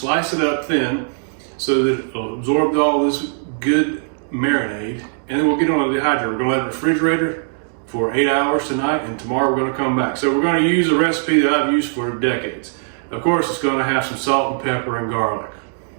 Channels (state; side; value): silent; left; digital silence